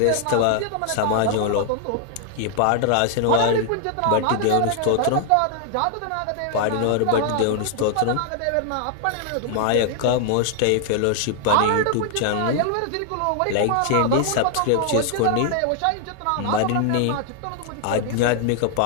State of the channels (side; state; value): both; different; correlation 0.00